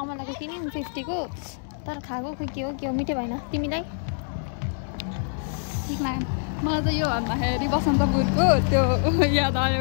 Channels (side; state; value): right; silent; digital silence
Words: किन्यौँ 50 को तर खाएको खोइ के हो मिठो भएन तिमीलाई मलाई त यो भन्दाखेरि बसन्तपुरको त्यो याद